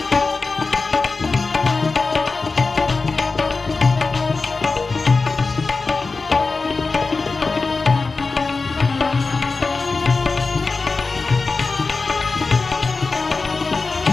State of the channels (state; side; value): quieter; right; 4.0 dB